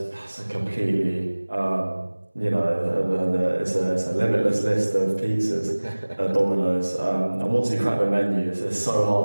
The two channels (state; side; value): inverted; both; correlation -1.00